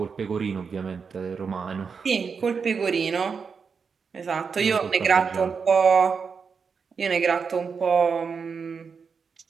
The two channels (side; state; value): left; quieter; 5.7 dB